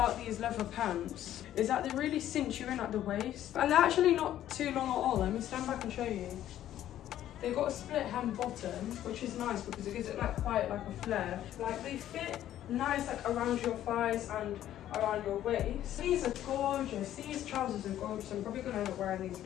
these leather pants is that they really cinch you in at the waist, and they're actually not too long at all. Let me stand back and show you. They've got a split hem bottom, which is nice because it gives it like quite like a flare. Like they fit nice like around your thighs and around your waist. These are gorgeous. These trousers are gorgeous. I'm probably gonna end up wearing these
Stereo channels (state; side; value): quieter; right; 12.2 dB